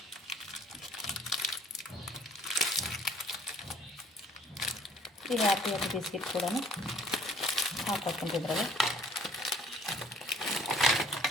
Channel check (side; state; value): both; normal; correlation 0.56